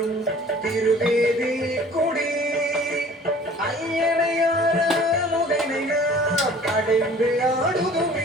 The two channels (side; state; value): both; normal; correlation 0.49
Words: திருவேதி கொடி ஐயனையார முகனை நாம் அடைந்து